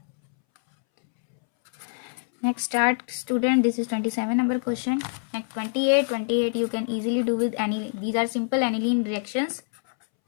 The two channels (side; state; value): right; silent; 62 dB below the other